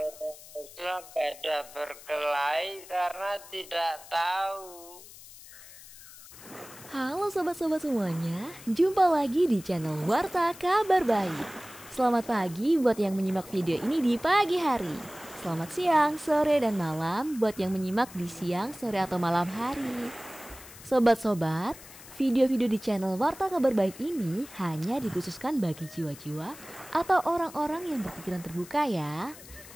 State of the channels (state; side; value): noise; left; hiss, 18 dB below the sound